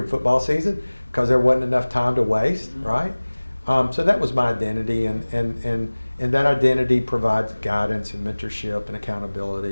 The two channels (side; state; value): both; inverted; correlation -1.00